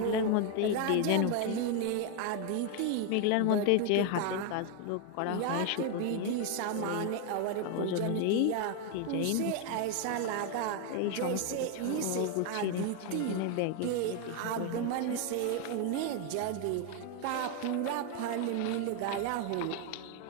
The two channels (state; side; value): different; both; correlation 0.01